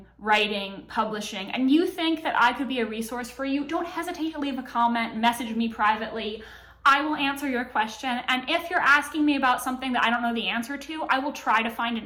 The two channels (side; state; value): both; identical; correlation 1.00